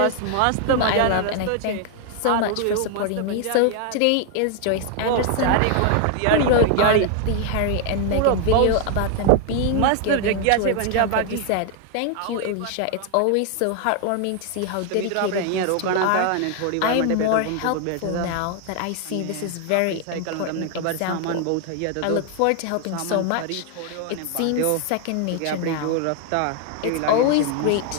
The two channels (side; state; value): both; different; correlation 0.00